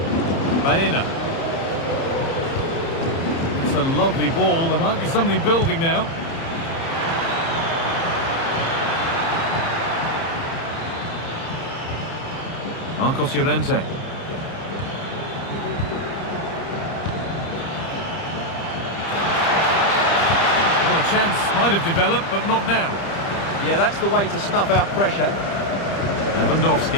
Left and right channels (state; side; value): late; right; 30 ms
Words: Baena. It's a lovely ball. There might be something building now. Marcos Llorente. Well, a chance might have developed, but not now. Yeah, that's the way to snuff out pressure.